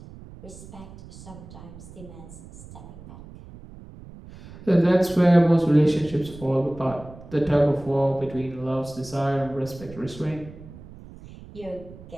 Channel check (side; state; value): right; noise; rumble, 17 dB below the sound